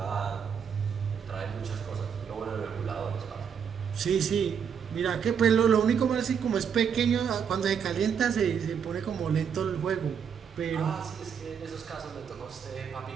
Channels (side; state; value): left; quieter; 7.3 dB